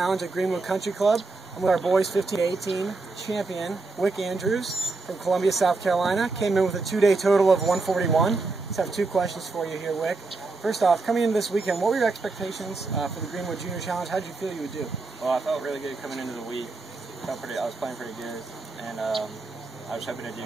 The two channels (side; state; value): left; quieter; 3.7 dB